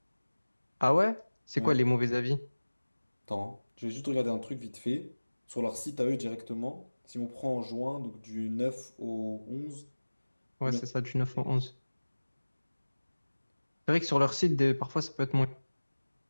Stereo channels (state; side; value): inverted; both; correlation -1.00